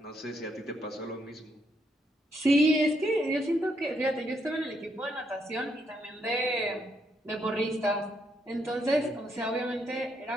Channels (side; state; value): both; normal; correlation 0.76